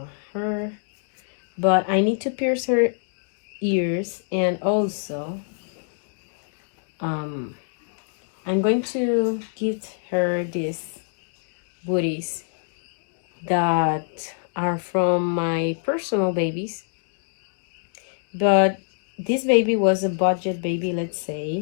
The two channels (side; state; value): right; silent; digital silence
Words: her. But I need to pierce her ears, and also I'm going to gift her these booties that are from my personal babies. But this baby was a budget baby, let's